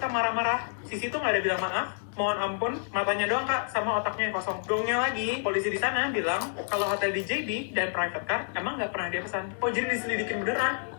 marah-marah, Sisi tuh nggak ada bilang maaf, mohon ampun, matanya doang kak, sama otaknya yang kosong. Gongnya lagi, polisi di sana bilang kalau hotel di JB dan private car emang nggak pernah dia pesan. Oh jadi diselidikin beneran?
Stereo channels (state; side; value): silent; right; 59 dB below the other